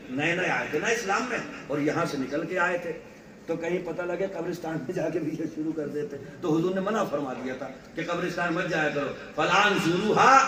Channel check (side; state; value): both; identical; correlation 1.00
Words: نئے نئے آئے تھے نا اسلام میں اور یہاں سے نکل کے آئے تھے تو کہیں پتہ لگے قبرستان میں جا کے بھی یہ شروع کر دیتے تو حضور نے منع فرما دیا تھا کہ قبرستان مت جایا کرو فلان زوروہا